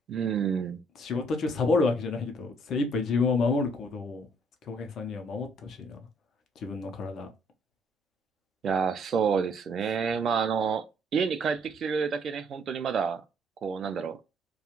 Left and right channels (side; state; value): both; normal; correlation 0.65